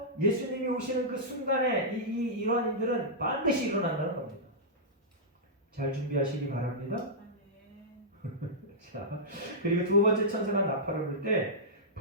예수님이 오시는 그 순간에 이러한 일들은 반드시 일어난다는 겁니다. 잘 준비하시기 바랍니다. 자, 그리고 두 번째 천사가 나팔을 불 때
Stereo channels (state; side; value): normal; both; correlation -0.12